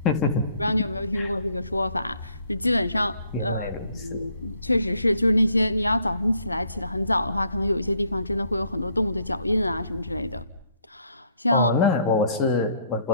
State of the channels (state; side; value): inverted; both; correlation -0.67